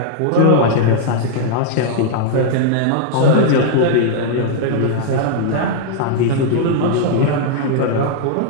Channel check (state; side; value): different; both; correlation -0.01